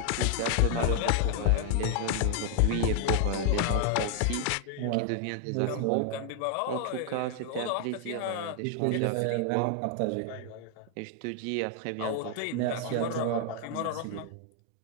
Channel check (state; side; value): different; both; correlation 0.00